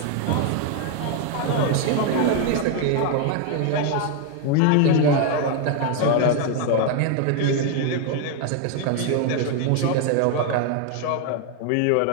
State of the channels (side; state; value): both; different; correlation 0.01